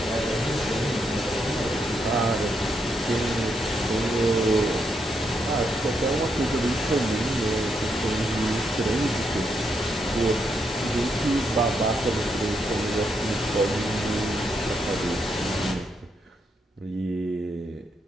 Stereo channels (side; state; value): both; normal; correlation 0.79